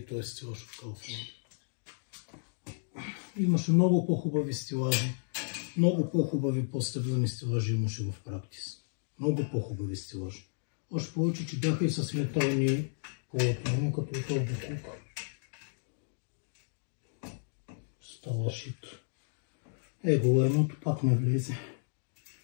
той е стилаж от Kaufland. Имаше много по-хубави стилажи. Много по-хубави по-стъблени стилажи имаше в практис. Много по-хубави стилажи. Още повече, че бяха и с метални полотна, като този буклук. Става шит. Его, едното пак не влезе.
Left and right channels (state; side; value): silent; right; digital silence